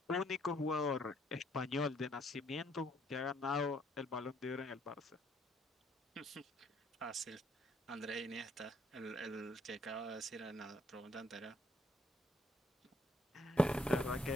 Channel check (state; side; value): normal; both; correlation 0.67